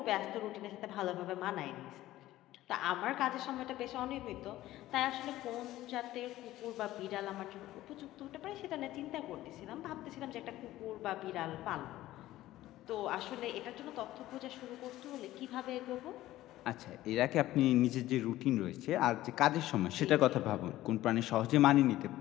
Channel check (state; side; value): quieter; right; 15.3 dB